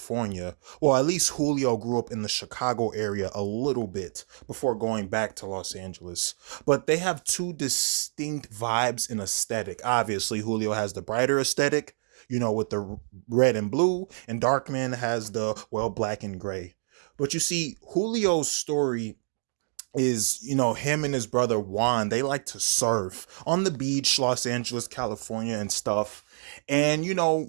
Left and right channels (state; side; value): silent; left; digital silence